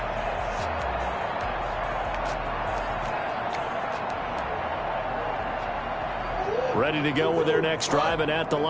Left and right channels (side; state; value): both; identical; correlation 1.00